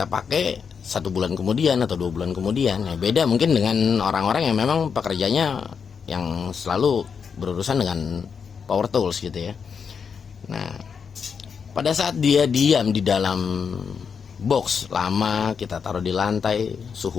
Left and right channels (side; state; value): right; quieter; 6.3 dB